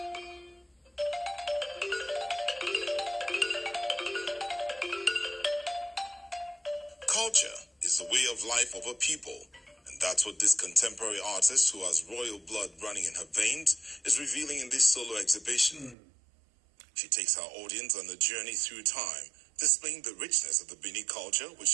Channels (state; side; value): drops out; left; at 16.0 s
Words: Culture is the way of life of a people. And that's what this contemporary artist, who has royal blood running in her veins, is revealing in this solo exhibition. She takes her audience on a journey through time, displaying the richness of the Benin culture, which